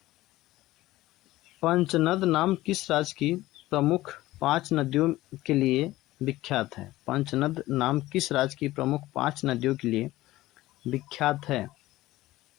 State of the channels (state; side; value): quieter; right; 17.0 dB